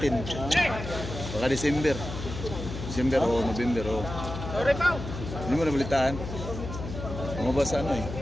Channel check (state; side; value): noise; left; hum, 8 dB below the sound